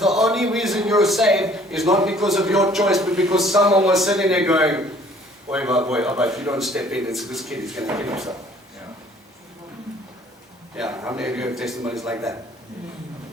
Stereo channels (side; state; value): both; normal; correlation 0.56